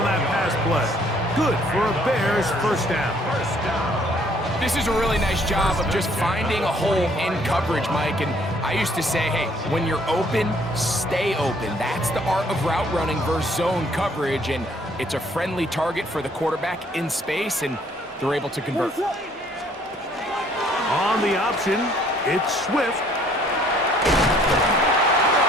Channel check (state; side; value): normal; both; correlation 0.62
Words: that pass play. Good for a Bears first down. This is a really nice job of just finding a hole in coverage, Mike. And I used to say, hey, when you're open, stay open. That's the art of route running versus zone coverage. And it's a friendly target for the quarterback in space, and they're able to convert. On the option, it's Swift.